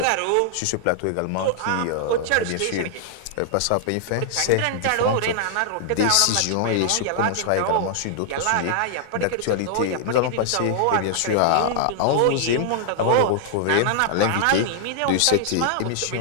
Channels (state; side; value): different; both; correlation -0.01